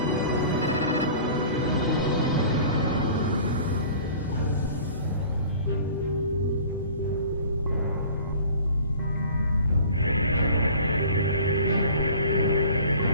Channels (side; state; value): both; inverted; correlation -0.45